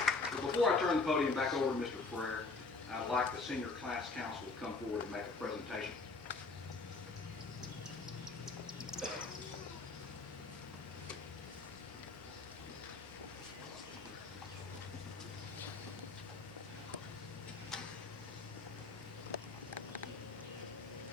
But before I turn the podium back over to Mr. Frere, I'd like the Senior Class Council to come forward and make a presentation.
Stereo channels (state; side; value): quieter; right; 4.0 dB